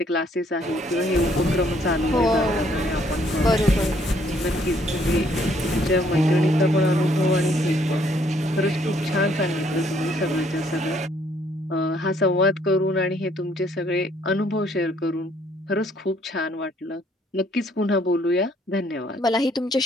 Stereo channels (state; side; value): normal; both; correlation 0.66